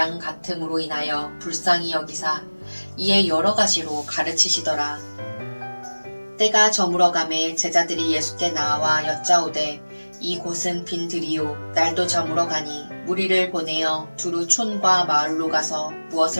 같음으로 인하여 불쌍히 여기사 이에 여러 가지로 가르치시더라. 때가 저물어가매 제자들이 예수께 나와 여짜오되 이곳은 빈 들이요 날도 저물어 가니 무리를 보내어 두루 촌과 마을로 가서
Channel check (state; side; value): inverted; both; correlation -1.00